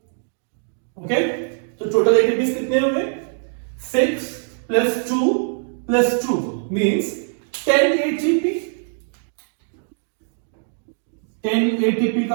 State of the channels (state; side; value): silent; left; digital silence